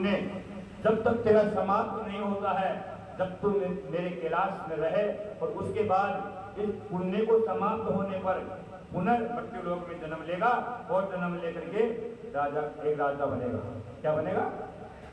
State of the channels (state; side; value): identical; both; correlation 1.00